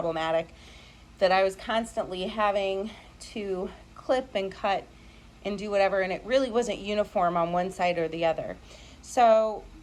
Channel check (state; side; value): identical; both; correlation 1.00